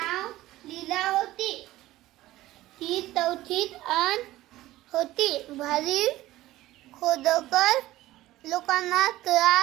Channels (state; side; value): quieter; left; 16.2 dB